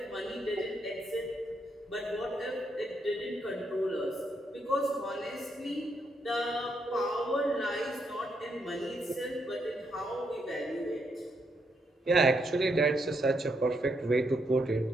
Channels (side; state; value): both; normal; correlation 0.77